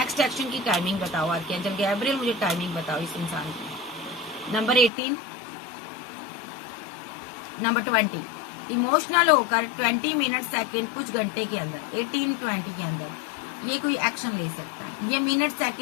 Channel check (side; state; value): right; drops out; at 4.9 s